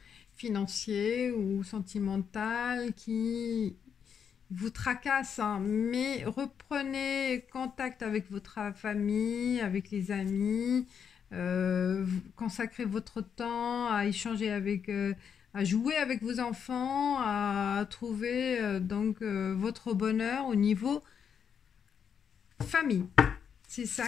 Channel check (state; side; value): quieter; right; 7.4 dB